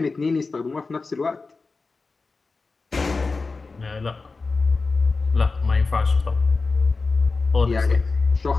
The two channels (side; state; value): right; quieter; 4.0 dB